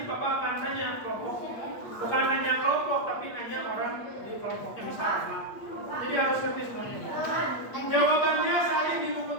Bapak akan nanya kelompok. Bukan nanya kelompok tapi nanya orang di kelompoknya bisa apa. Jadi harus ngerti semuanya. Jawabannya salin di buku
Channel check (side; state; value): right; late; 8.4 ms